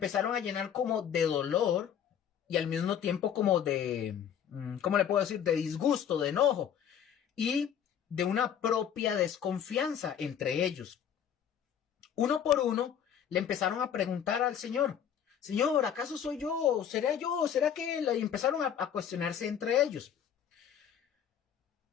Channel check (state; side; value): quieter; right; 8.8 dB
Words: a llenar como de dolor y al mismo tiempo como de, ¿cómo le puedo decir? De disgusto, de enojo y de una propia desconfianza entre ellos. Uno por uno le empezaron a preguntar al Señor: Señor, ¿acaso soy yo? ¿Será que él? Y empezaron a cuestionarse entre ellos.